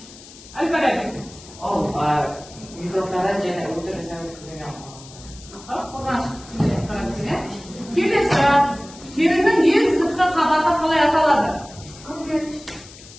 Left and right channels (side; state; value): left; noise; hiss, 19 dB below the sound